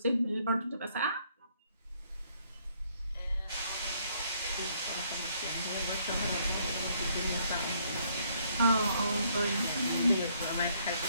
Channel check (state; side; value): inverted; both; correlation -0.68